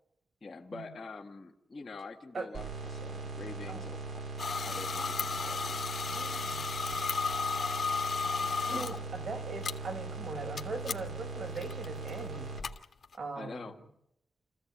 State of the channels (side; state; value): both; normal; correlation 0.61